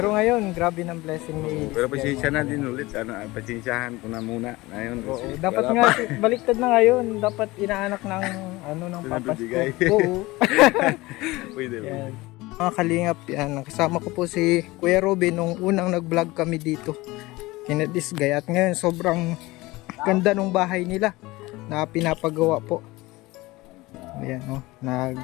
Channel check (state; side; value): quieter; right; 20.6 dB